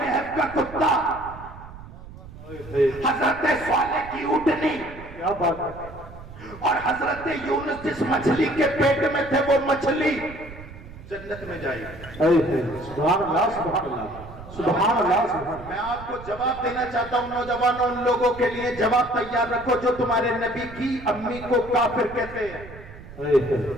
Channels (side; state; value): right; noise; rumble, 16 dB below the sound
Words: کا کتا، حضرت صالح کی اونٹنی، اور حضرت یونس جس مچھلی کے پیٹ میں تھے وہ مچھلی جنت میں جائے گی۔ سبحان اللہ، سبحان اللہ، سبحان اللہ، سبحان اللہ۔ میں آپ کو جواب دینا چاہتا ہوں نوجوانوں، ان لوگوں کے لیے جواب تیار رکھو جو تمہارے نبی کی امی کو کافر کہتے ہیں۔